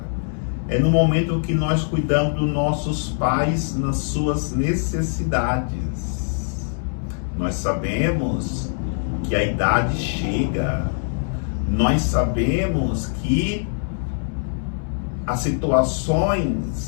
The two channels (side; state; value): right; silent; digital silence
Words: é no momento que nós cuidamos dos nossos pais nas suas necessidades. Nós sabemos que a idade chega, nós sabemos que as